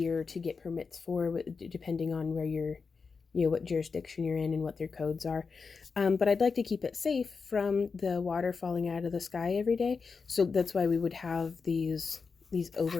to get permits for, depending on where you're, what jurisdiction you're in and what their codes are. But I'd like to keep it safe from the water falling out of the sky every day. So that's why we would have these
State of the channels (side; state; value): right; quieter; 5.0 dB